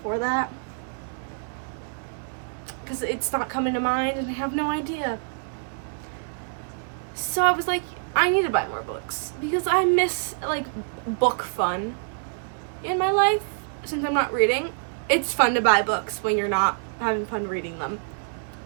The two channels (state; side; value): silent; left; digital silence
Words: that. Because it's not coming to mind and I have no idea. So I was like, I need to buy more books. Because I miss, like, book fun in my life since I'm not reading. It's fun to buy books when you're not having fun reading them.